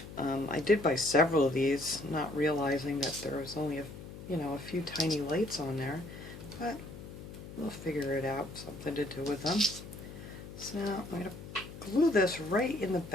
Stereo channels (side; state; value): left; noise; hum, 13 dB below the sound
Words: I did buy several of these, not realizing that there was only a few tiny lights on there, but we'll figure it out, something to do with them. So now I'm going to glue this right in the